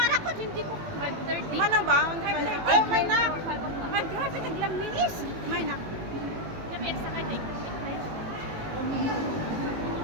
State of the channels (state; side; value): late; left; 19 ms